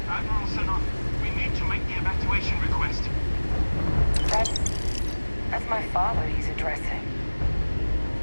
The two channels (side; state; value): both; inverted; correlation -1.00